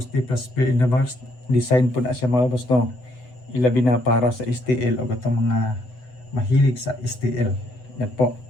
plus pair in the box design po na siya mga boss no ilabi na para sa STL o gatong mga mahilig sa STL. Yan po.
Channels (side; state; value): right; late; 8.0 ms